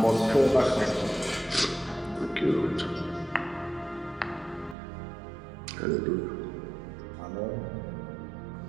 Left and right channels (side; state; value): left; drops out; at 4.8 s